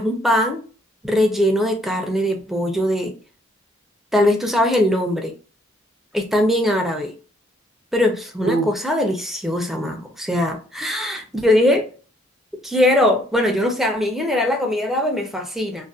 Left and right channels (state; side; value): normal; both; correlation 0.66